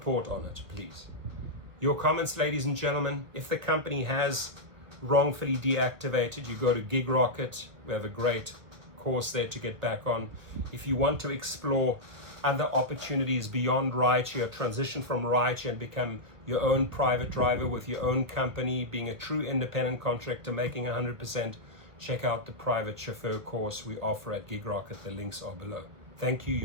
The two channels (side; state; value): left; late; 1.4 ms